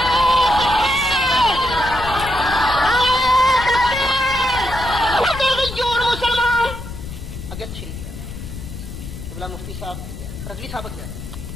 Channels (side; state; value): left; noise; rumble, 10 dB below the sound